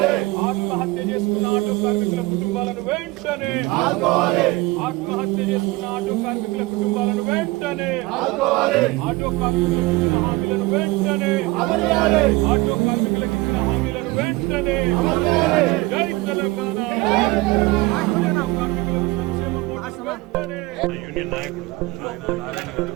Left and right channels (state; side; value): quieter; left; 21.5 dB